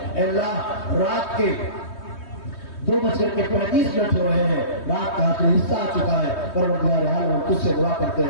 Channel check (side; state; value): right; late; 3.2 ms